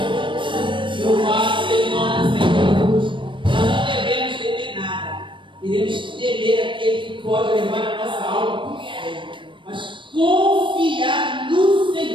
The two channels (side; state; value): left; late; 0.24 ms